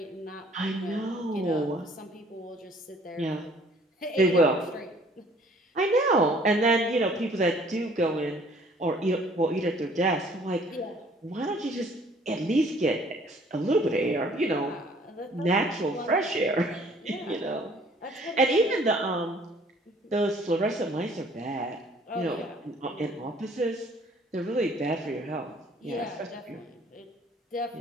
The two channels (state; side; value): normal; both; correlation 0.57